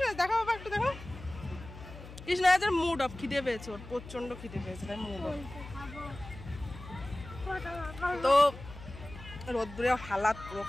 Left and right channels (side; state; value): left; noise; hum, 14 dB below the sound